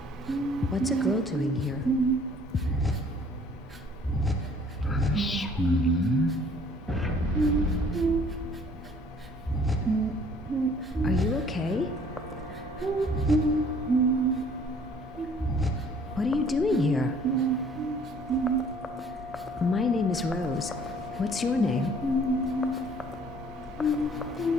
What's a girl doing here? Are you okay? What are you doing here? My name is Rose. What's your name?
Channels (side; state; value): both; normal; correlation 0.56